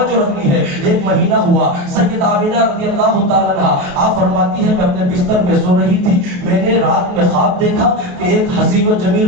رکھنی ہے, ایک مہینہ ہوا. سیدہ آمینہ رضی اللہ تعالیٰ عنہ آپ فرماتی ہے کہ اپنے بستر پہ سو رہی تھی, میں نے رات میں خواب دیکھا کہ ایک حسین و جمیل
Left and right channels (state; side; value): late; left; 28 ms